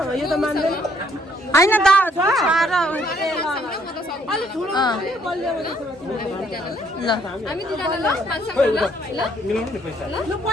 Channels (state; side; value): normal; both; correlation 0.67